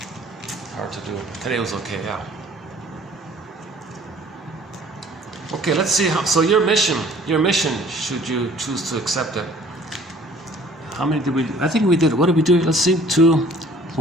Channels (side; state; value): both; normal; correlation 0.53